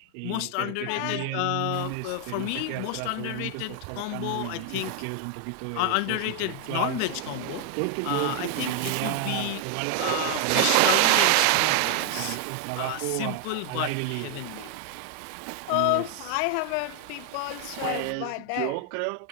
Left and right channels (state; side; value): different; both; correlation 0.00